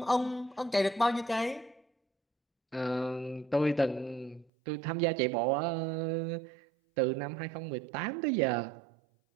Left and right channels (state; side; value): drops out; left; at 4.5 s